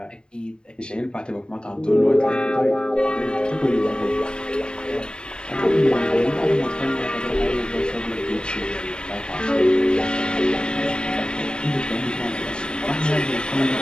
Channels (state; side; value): late; right; 0.049 ms